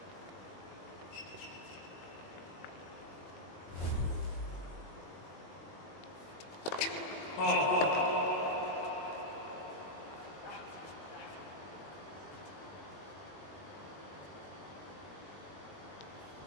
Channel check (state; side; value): late; right; 21 ms